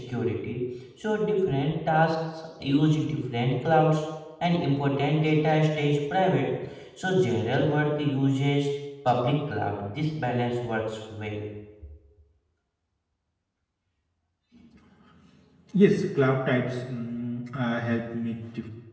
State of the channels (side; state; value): both; identical; correlation 1.00